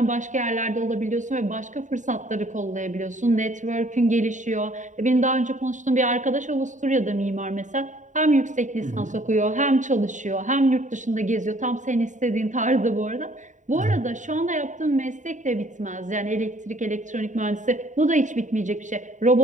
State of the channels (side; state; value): left; late; 0.36 ms